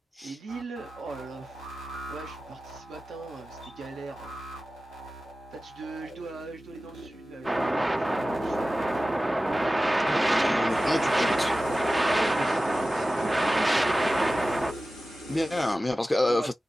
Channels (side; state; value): both; normal; correlation 0.95